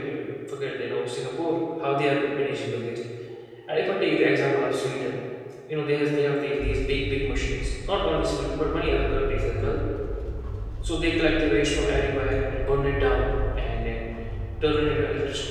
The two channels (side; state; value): both; identical; correlation 1.00